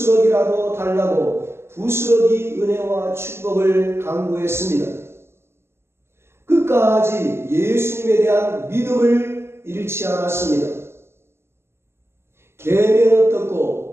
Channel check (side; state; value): left; late; 0.12 ms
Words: 달라고 부스러기 은혜와 축복을 강구했습니다. 끝까지 예수님에 대한 믿음을 잃지 않았습니다. 개면